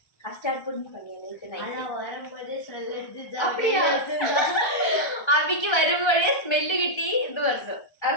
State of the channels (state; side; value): late; right; 1.3 ms